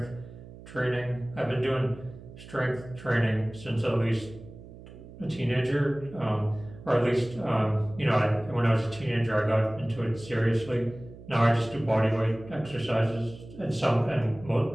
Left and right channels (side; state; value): right; noise; hum, 17 dB below the sound